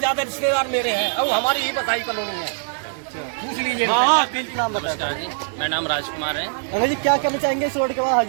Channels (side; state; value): left; silent; digital silence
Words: रिश्तेदार मेरे हैं और हमारी ही बधाई कॉलोनी है। पूछ लीजिए। हाँ, बिल्कुल नाम बताया। मेरा नाम राजकुमार है। अंकल जी क्या कहना चाहेंगे इस रोड के बाद?